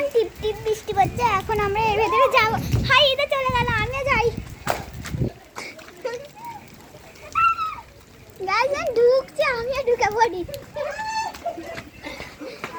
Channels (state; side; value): identical; both; correlation 1.00